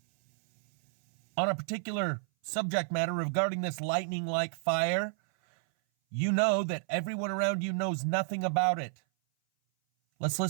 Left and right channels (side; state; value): left; silent; 57 dB below the other